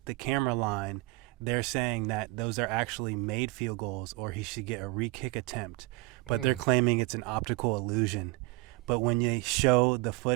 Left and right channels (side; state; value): left; quieter; 22.5 dB